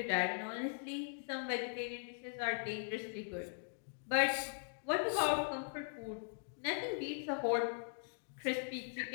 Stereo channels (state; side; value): silent; right; digital silence